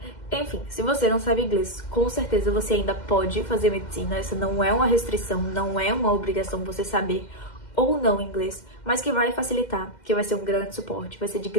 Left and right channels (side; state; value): right; late; 2.1 ms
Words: Enfim, se você não sabe inglês, com certeza você ainda pode fazer medicina. Essa não é uma restrição, não é uma obrigação você saber ou não inglês, mas que vai facilitar, que vai ser um grande suporte, vai ser de